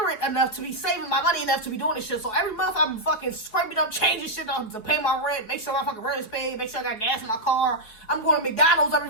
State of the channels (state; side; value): late; right; 4.7 ms